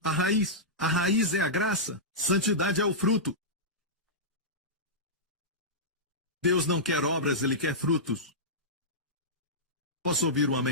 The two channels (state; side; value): normal; both; correlation -0.14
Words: a raiz. A raiz é a graça, santidade é o fruto. Deus não quer obras, Ele quer frutos. Posso ouvir um